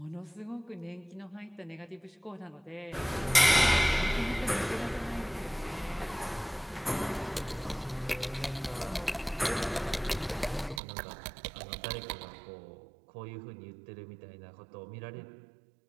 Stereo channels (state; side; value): drops out; left; at 10.8 s